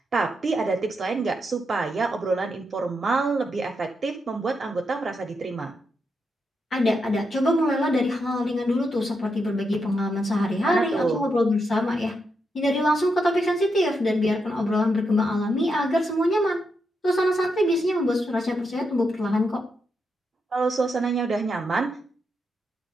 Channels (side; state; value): both; normal; correlation 0.83